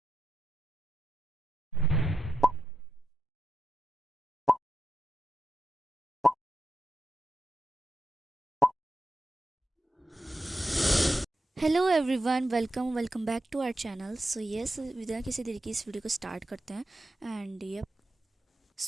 Hello everyone, welcome back to our channel. So yes, बिना किसी तरीके इस वीडियो को स्टार्ट करते हैं। एंड ये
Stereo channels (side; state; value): both; normal; correlation 0.88